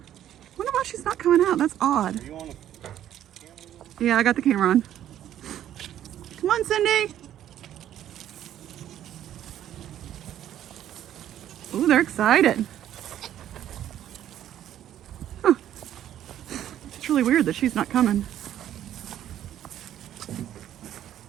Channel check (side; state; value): left; quieter; 11.4 dB